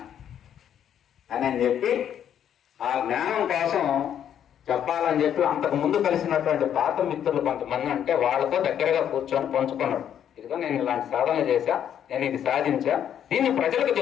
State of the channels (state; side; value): quieter; right; 9.5 dB